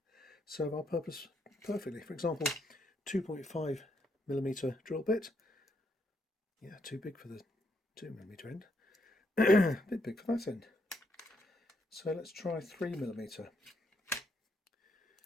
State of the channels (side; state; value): both; normal; correlation 0.75